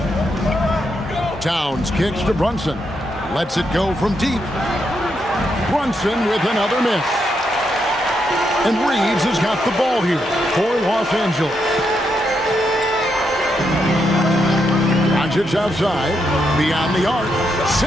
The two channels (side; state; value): both; normal; correlation 0.80